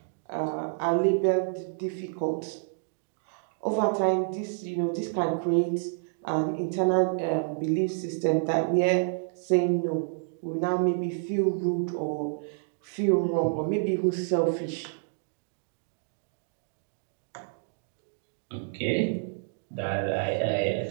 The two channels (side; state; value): left; silent; digital silence